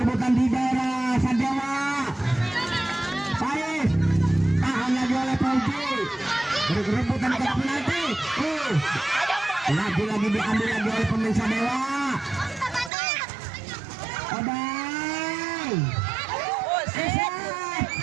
di daerah Sadewa. Pais tahan lagi oleh Pauji, berebutan ke penalti. Lagi diambil lagi oleh pemain Sadewa. Odang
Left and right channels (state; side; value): drops out; left; at 12.9 s